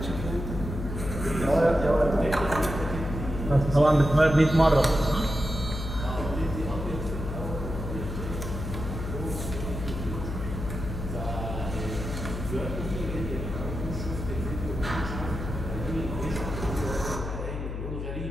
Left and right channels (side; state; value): left; noise; hum, 5 dB below the sound